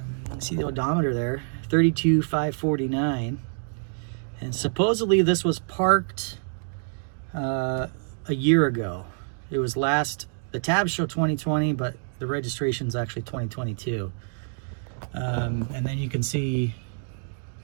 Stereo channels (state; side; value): silent; left; digital silence